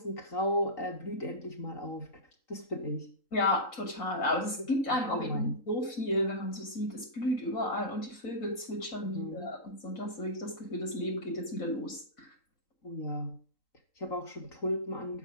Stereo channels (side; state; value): right; late; 4.1 ms